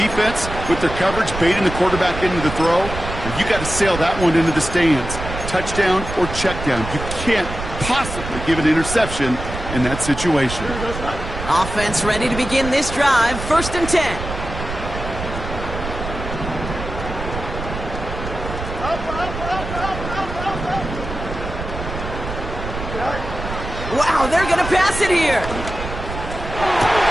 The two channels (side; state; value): right; noise; rumble, 7 dB below the sound